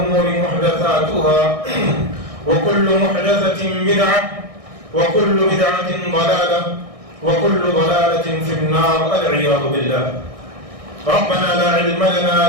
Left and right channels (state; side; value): late; left; 1.6 ms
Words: محدثاتها وكل محدثة بدعة وكل بدعة ضلالة وكل ضلالة في النار والعياذ بالله. ربنا لا علم لنا